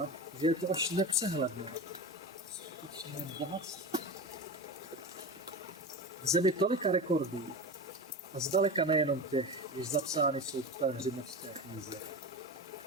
že je to až nepřehledné. Skutečné bohatství. V zemi tolika rekordů a zdaleka nejenom těch, jež zapsány jsou v Pelhřimovské knize.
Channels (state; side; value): normal; both; correlation 0.26